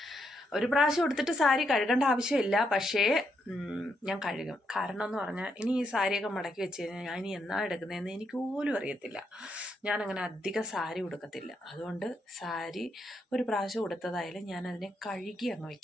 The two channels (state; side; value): normal; both; correlation 0.79